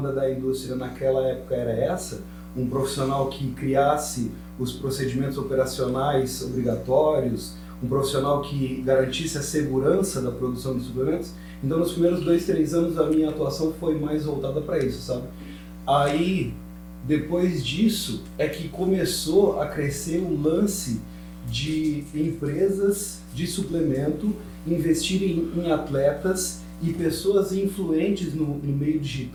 da indústria naquela época era essa, um profissional que criasse os procedimentos operacionais obrigatórios, um profissional que garantisse a segurança da produção de suplementos. Então, nos primeiros 2, 3 anos, a minha atuação foi mais voltada para isso, sabe? Aí, Depois disso é que começou a crescer o lance de empresas de suplemento investirem em atletas e pessoas influentes no meio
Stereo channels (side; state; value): both; identical; correlation 1.00